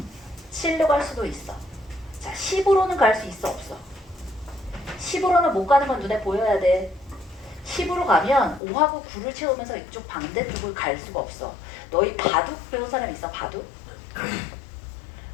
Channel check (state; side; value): drops out; right; at 8.6 s